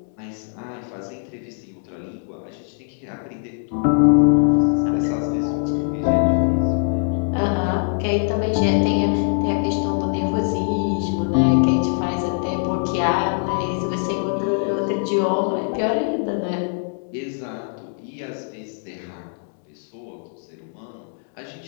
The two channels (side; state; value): right; silent; 64 dB below the other